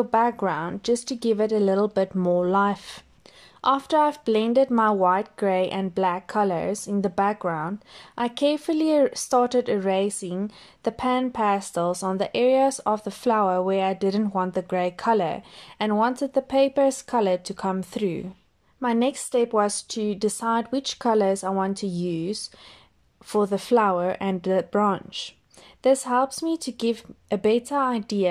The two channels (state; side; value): identical; both; correlation 1.00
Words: background, just to give it a little bit more life. After I've blended my white, grey and black colors in the background, I carefully started erasing the Pan Pastels on the areas of the flower where I didn't want the grey color and wanted the paper's color to come through. My next step was to decide which colors I want to use for the flower and the branch. This helps me to give a better